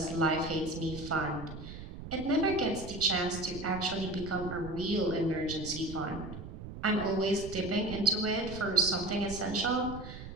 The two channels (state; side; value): noise; right; rumble, 11 dB below the sound